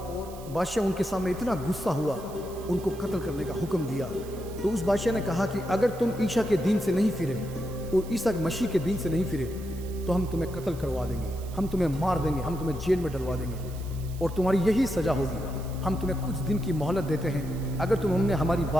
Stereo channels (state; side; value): noise; right; hiss, 20 dB below the sound